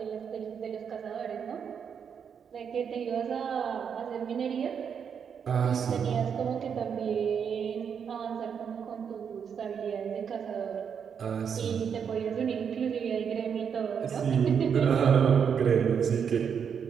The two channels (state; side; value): quieter; left; 7.2 dB